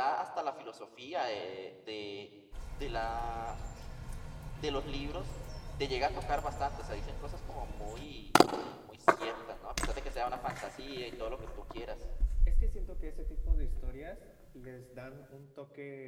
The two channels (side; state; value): both; identical; correlation 1.00